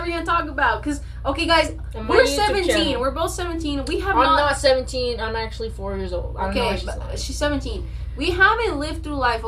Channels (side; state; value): both; identical; correlation 1.00